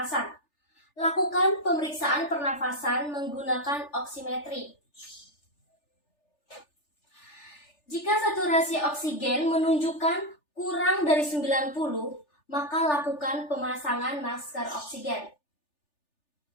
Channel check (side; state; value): right; late; 3.4 ms